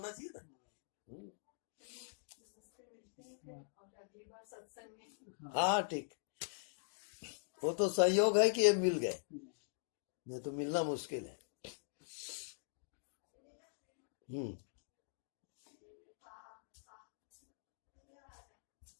चाहिए ना। और अगली बार सत्संग में। हाँ ठीक, वो तो संयोग है कि ये मिल गए, नहीं तो मिलना मुश्किल है।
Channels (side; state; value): right; silent; digital silence